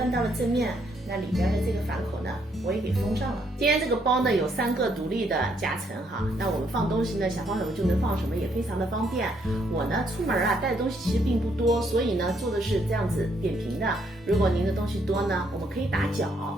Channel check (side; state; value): both; normal; correlation 0.72